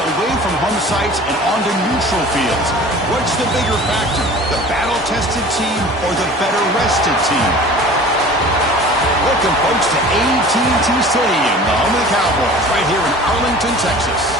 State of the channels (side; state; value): both; normal; correlation 0.42